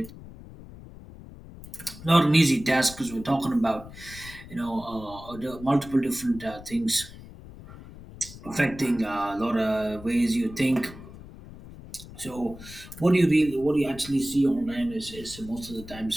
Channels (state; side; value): noise; left; rumble, 16 dB below the sound